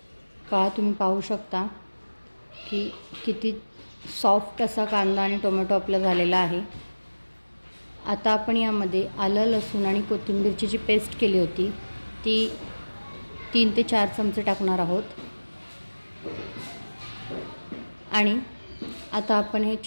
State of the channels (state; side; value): inverted; both; correlation -1.00